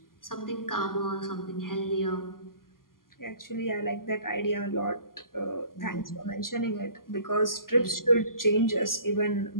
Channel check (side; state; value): right; late; 0.91 ms